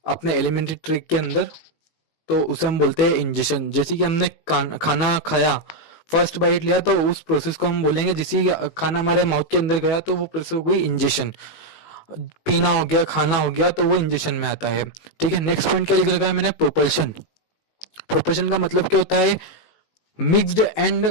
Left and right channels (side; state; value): right; late; 19 ms